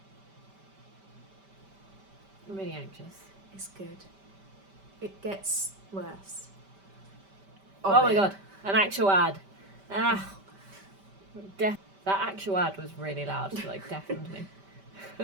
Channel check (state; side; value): late; left; 5.1 ms